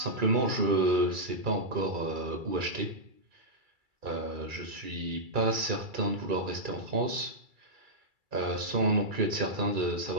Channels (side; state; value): left; late; 2.3 ms